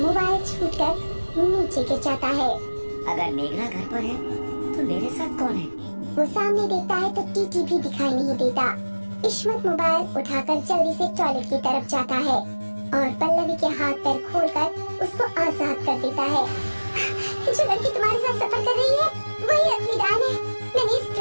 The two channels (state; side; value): inverted; both; correlation -1.00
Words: छूटकर नीचे गिर जाता है। अगर मेघना घर पर है तो मेरे साथ कौन है? वो सामने देखता है तो टीटी भी दिखाई नहीं देता। इश्मत मोबाइल उठाकर जल्दी से टॉयलेट की तरफ जाता है और पल्लवी के हाथ पैर खोलकर उसको आजाद कर देता है। जो लड़की तुम्हारे साथ सफर कर रही है वही असली डायन है। मैंने इस